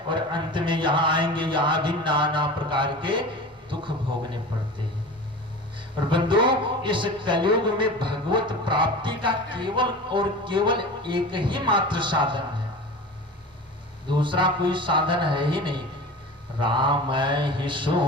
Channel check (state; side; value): normal; both; correlation 0.34